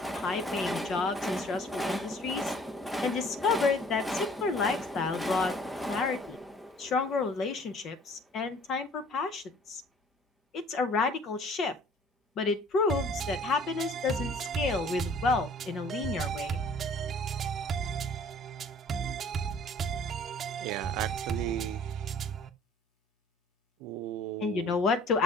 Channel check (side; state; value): both; normal; correlation 0.53